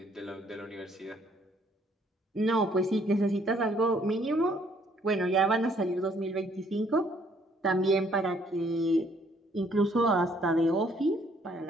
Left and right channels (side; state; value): both; normal; correlation 0.65